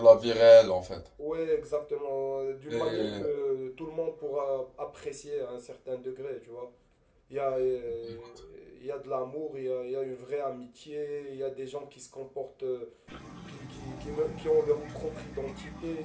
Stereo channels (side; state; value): both; identical; correlation 1.00